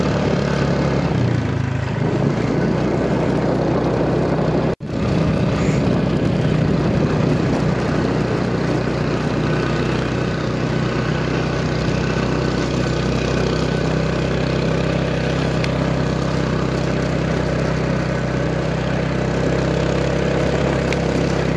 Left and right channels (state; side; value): identical; both; correlation 1.00